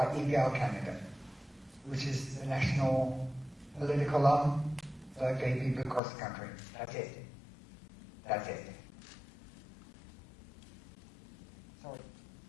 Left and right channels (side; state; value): right; drops out; at 6.0 s